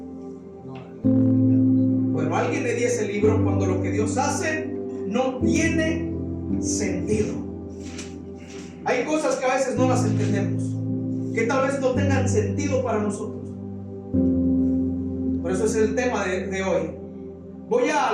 Bueno, alguien le di ese libro, cuando lo que Dios hace no tiene sentido. Hay cosas que a veces no las entendemos, que tal vez no tengan sentido para nosotros. Por eso es el tema de hoy. Voy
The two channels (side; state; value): both; identical; correlation 1.00